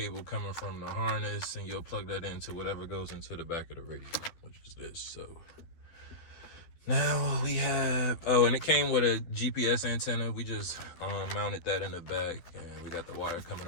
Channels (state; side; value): late; right; 12 ms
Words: coming from the harness, and you'll plug that into whatever goes into the back of the radio, which is this. So now we have, and it came with a GPS antenna. We just mounted that in the back, and we got the wire